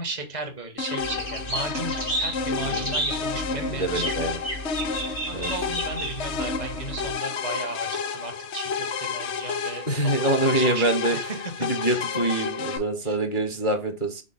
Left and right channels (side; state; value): right; late; 3.1 ms